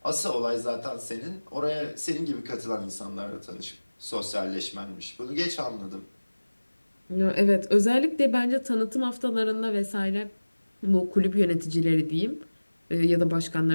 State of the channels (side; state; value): both; inverted; correlation -1.00